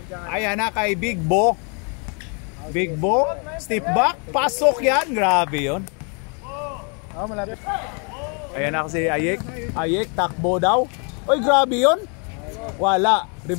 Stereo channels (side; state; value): right; quieter; 37.1 dB